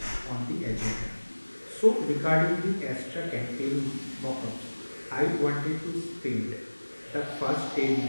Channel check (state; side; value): inverted; both; correlation -1.00